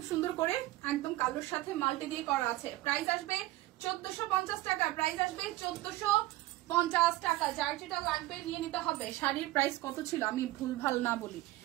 সুন্দর করে একদম কালোর সাথে মাল্টি দিয়ে করা আছে। প্রাইস আসবে 1450 টাকা, প্রাইস আসবে 1450 টাকা। যার যেটা লাগবে নিয়ে নিতে হবে। শাড়ির প্রাইস কত ছিল আমি ভুলভাল না বলি,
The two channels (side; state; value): left; quieter; 17.2 dB